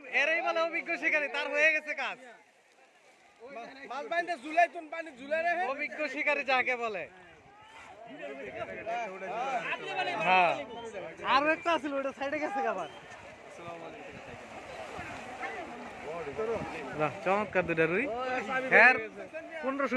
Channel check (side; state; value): both; identical; correlation 1.00